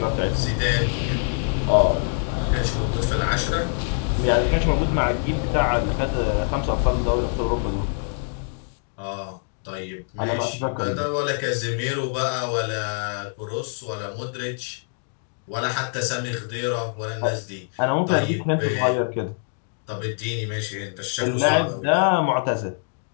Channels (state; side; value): silent; right; digital silence